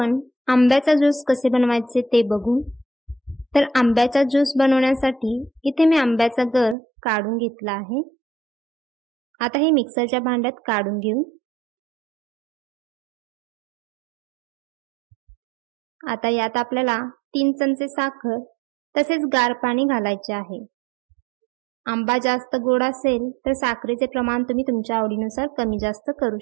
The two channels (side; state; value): left; drops out; at 6.8 s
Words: आंब्याचा ज्यूस कसे बनवायचे ते बघू। तर आंब्याचा ज्यूस बनवण्यासाठी इथे मी आंब्याचा गर काढून घेतला आहे। आता हे मिक्सरच्या भांड्यात काढून घेऊ। आता यात आपल्याला 3 चमचे साखर तसेच गार पाणी घालायचे आहे। आंबा जास्त गोड असेल तर साखरेचे प्रमाण तुम्ही तुमच्या आवडीनुसार कमी जास्त करू